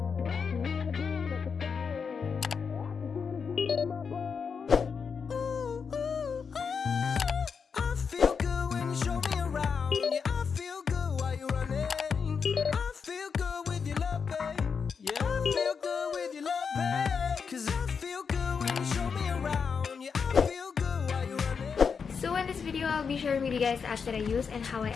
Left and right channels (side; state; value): right; quieter; 5.9 dB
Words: I'll be sharing with you guys the apps that I use and how I